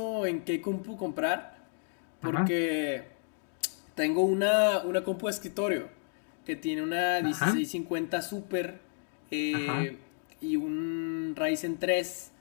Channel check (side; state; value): right; silent; 57 dB below the other